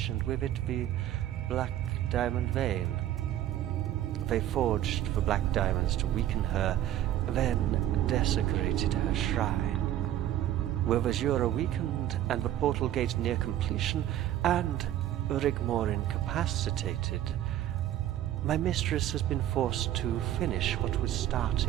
and with it the Black Diamond Vein. They forged the black diamonds to weaken her, then desecrated her shrine. With Azura weakened and the portal gate near completion, and Rigmor incapacitated, my mistress has been forced to finish what was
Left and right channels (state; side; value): quieter; left; 12.4 dB